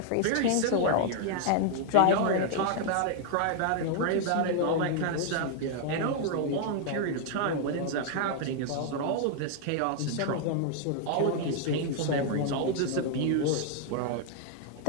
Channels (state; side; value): different; both; correlation 0.00